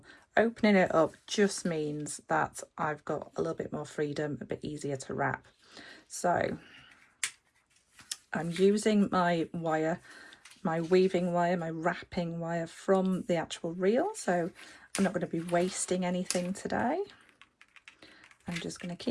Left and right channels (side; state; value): both; identical; correlation 1.00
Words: Opening it up just means that I've got a little bit more freedom, a bit easier to wrap. So I'm using my wire, my weaving wire, my wrapping wire from the actual reel, so I'm not going to be wasting anything today. I'm just going to